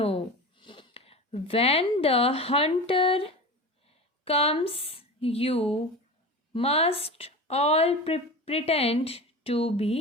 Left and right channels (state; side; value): normal; both; correlation 0.30